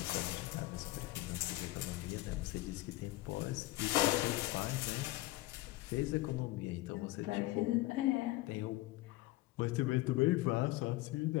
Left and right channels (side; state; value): right; quieter; 18.8 dB